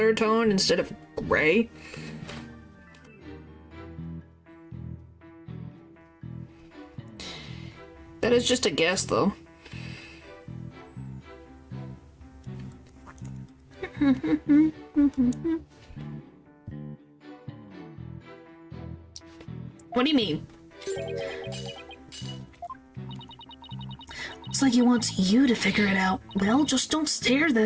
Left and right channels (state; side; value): identical; both; correlation 1.00